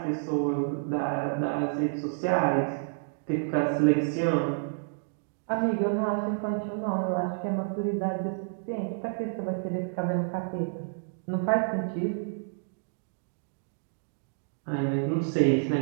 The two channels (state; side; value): silent; left; digital silence